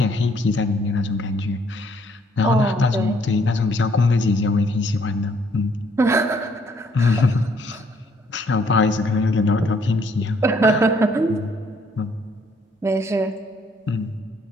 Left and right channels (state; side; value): normal; both; correlation 0.66